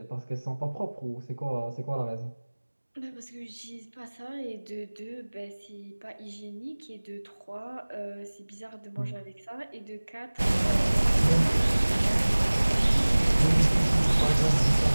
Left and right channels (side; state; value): both; inverted; correlation -1.00